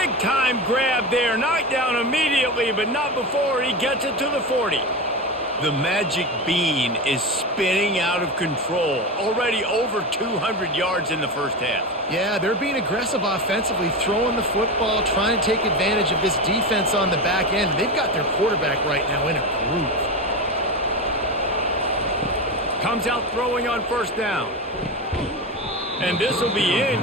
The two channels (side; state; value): both; normal; correlation 0.21